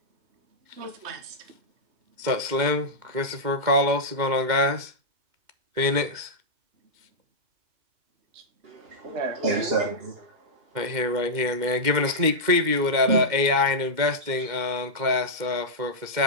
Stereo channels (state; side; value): late; left; 2.2 ms